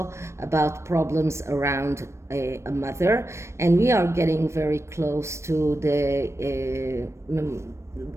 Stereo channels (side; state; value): left; late; 0.13 ms